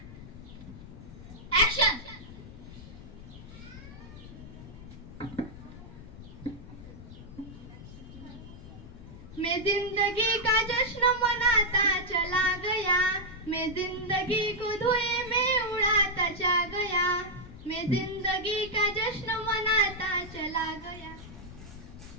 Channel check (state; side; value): noise; left; rumble, 15 dB below the sound